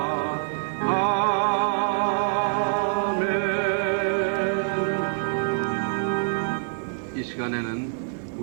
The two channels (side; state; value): left; silent; digital silence